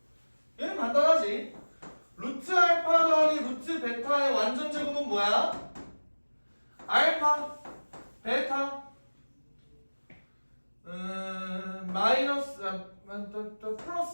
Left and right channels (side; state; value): both; inverted; correlation -1.00